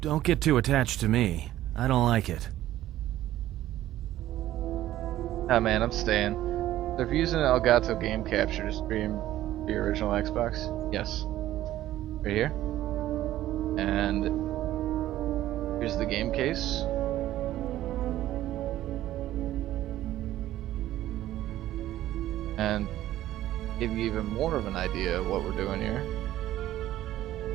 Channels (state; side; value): quieter; left; 13.9 dB